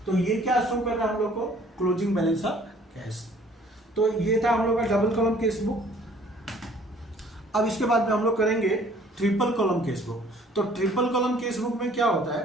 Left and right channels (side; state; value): both; normal; correlation 0.56